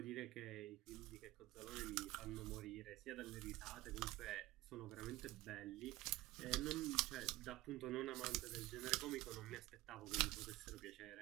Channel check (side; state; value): left; quieter; 18.3 dB